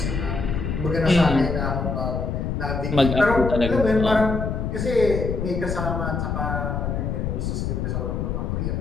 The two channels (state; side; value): noise; left; rumble, 2 dB below the sound